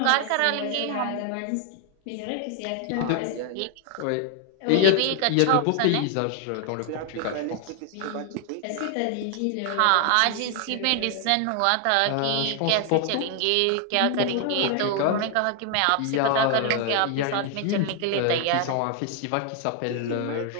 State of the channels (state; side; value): different; both; correlation 0.00